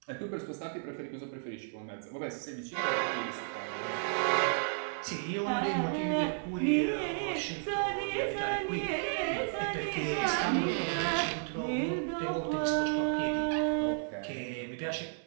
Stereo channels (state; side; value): silent; left; digital silence